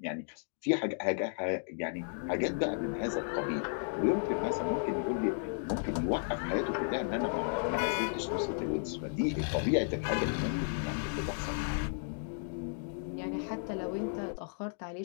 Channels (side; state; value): right; silent; digital silence